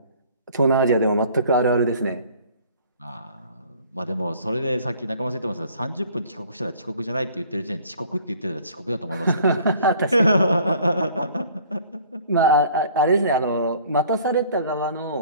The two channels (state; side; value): inverted; both; correlation -0.53